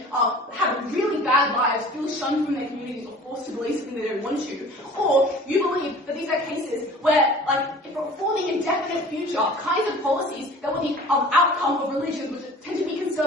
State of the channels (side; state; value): both; normal; correlation 0.45